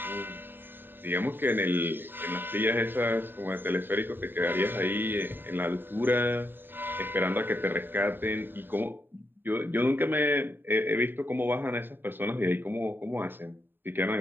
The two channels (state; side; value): late; left; 0.095 ms